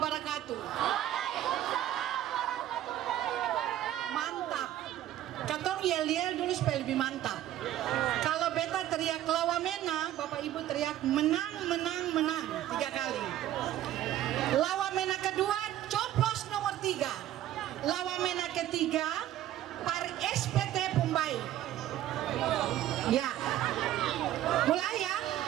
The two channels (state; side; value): quieter; left; 12.9 dB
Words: Mantap. Katong yel-yel dulu supaya lebih mantap. Kalau beta teriak lawa mena, Bapak Ibu teriak menang, menang, menang 3 kali. Lawa mena kedua, coplos nomor 3. Lawa mena ketiga, par SPT Pumbai. Ya, mulai ya.